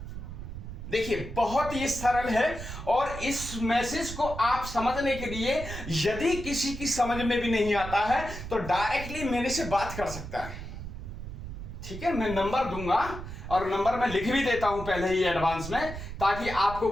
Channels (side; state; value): right; noise; rumble, 9 dB below the sound